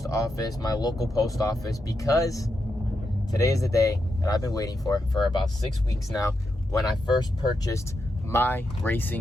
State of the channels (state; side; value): normal; both; correlation 0.85